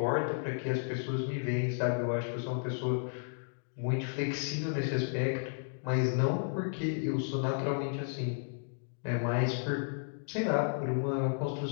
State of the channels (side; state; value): right; silent; digital silence